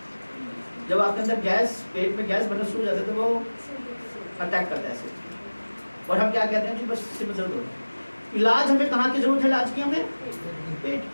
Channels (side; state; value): both; inverted; correlation -1.00